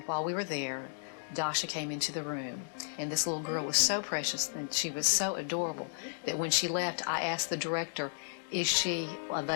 while we were there, Dasha came into the room, and this little girl was so precious and she was so adorable that when she left, I asked the director, is she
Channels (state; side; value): silent; right; digital silence